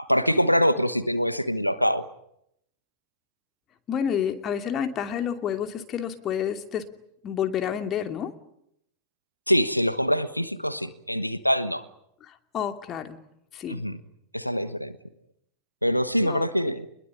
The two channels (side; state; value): both; inverted; correlation -0.66